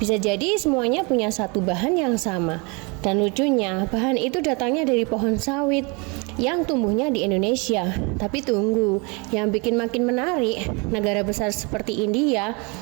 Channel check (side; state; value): left; quieter; 30.2 dB